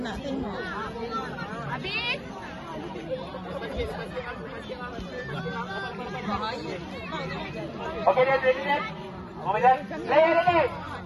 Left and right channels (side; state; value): both; identical; correlation 1.00